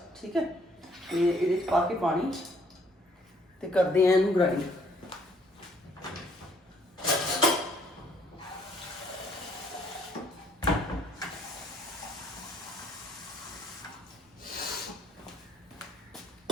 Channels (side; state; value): both; normal; correlation 0.63